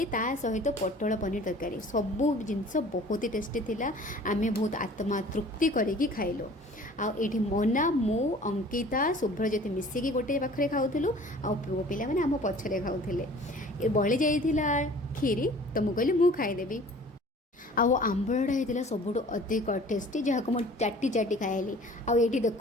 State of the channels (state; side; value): normal; both; correlation 0.48